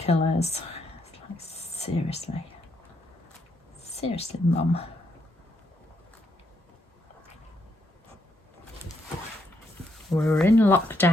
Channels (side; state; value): both; normal; correlation 0.76